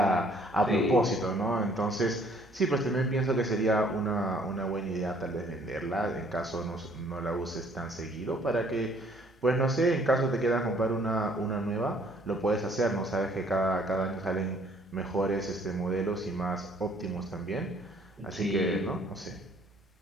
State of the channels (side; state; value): both; normal; correlation 0.61